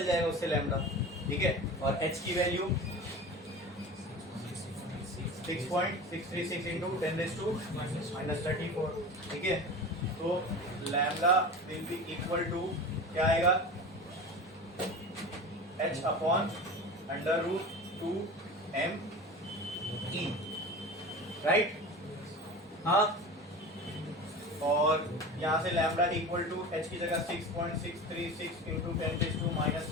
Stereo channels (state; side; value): normal; both; correlation 0.33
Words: जाएगा उससे लैम्डा, ठीक है। और h की वैल्यू 6.636 इंटू 10⁻⁻34, ठीक है। तो lambda will be equal to क्या आएगा? h upon √2m e, right. हाँ, और यहाँ से लैम्डा इक्वल टू h की जगह 6.636 इंटू